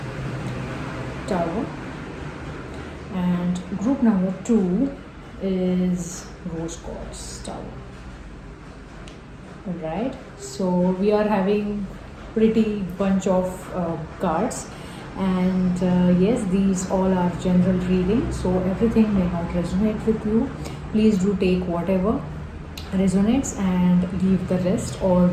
Tower, and group number two is rose quartz tower. All right, so we are having pretty bunch of cards, and yes, these all are general reading, so everything may not resonate with you. Please do take whatever resonates and leave the rest, or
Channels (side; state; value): both; identical; correlation 1.00